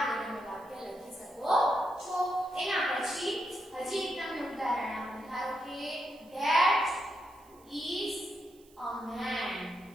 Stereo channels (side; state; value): right; noise; hiss, 28 dB below the sound